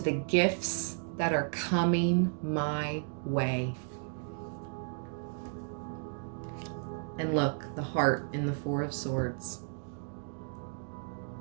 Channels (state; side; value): silent; left; 55 dB below the other